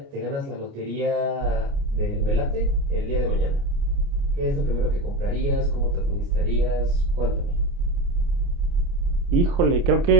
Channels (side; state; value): left; late; 29 ms